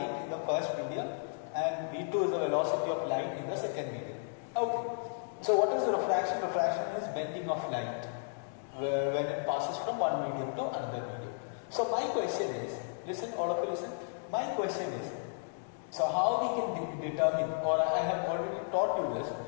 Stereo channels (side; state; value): right; silent; digital silence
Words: in the first medium, and V2 is the velocity of light in the second medium. Okay. So what is refraction? Refraction is bending of light when it passes from one medium to another medium. So my question is, listen, all of you listen. My question is, so how we can determine, or I have already taught you this,